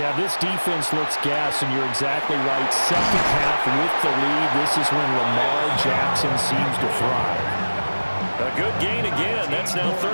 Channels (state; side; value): inverted; both; correlation -1.00